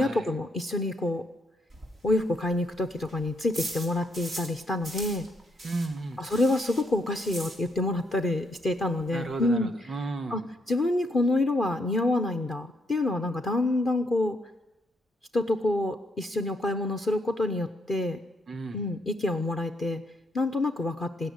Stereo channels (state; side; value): normal; both; correlation 0.74